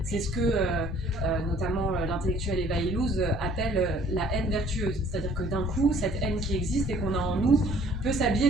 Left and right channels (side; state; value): right; noise; hum, 12 dB below the sound